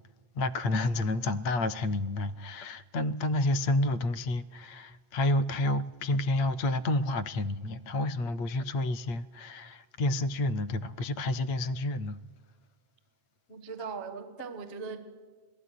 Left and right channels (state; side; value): late; right; 8.5 ms